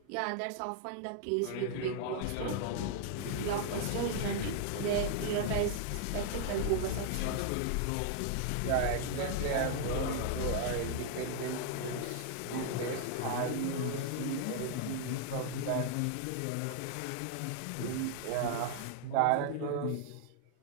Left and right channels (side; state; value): both; different; correlation 0.00